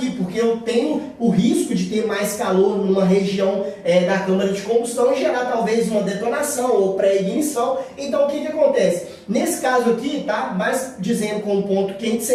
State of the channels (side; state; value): both; identical; correlation 1.00